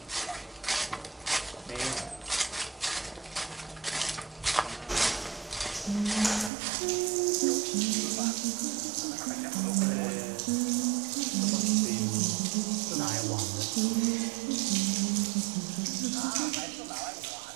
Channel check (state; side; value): drops out; left; at 6.5 s